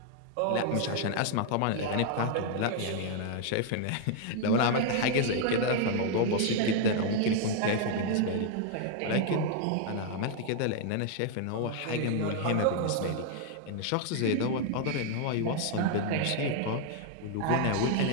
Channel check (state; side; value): different; both; correlation 0.00